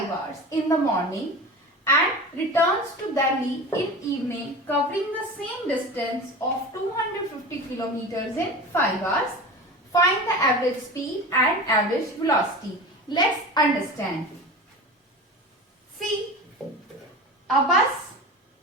hours in the morning and returns to Delhi in evening covering the same distance of 250 km in 5 hours. Find the average speed and average velocity. Let's understand. See, a bus,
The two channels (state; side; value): normal; both; correlation 0.32